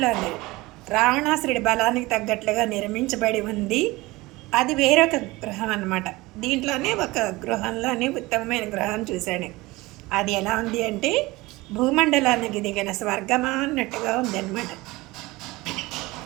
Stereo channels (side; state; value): left; quieter; 21.0 dB